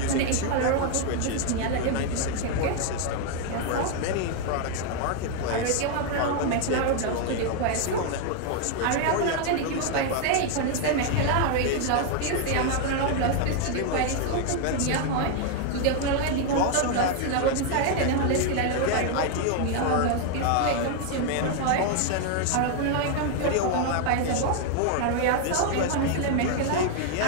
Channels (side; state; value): both; different; correlation 0.00